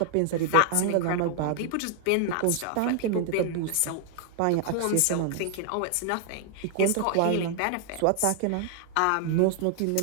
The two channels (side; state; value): both; different; correlation 0.00